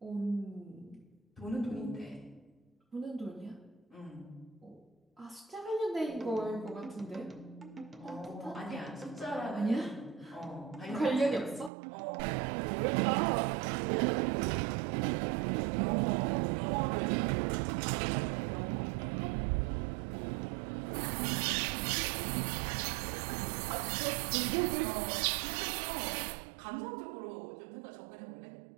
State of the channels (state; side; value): drops out; left; at 11.7 s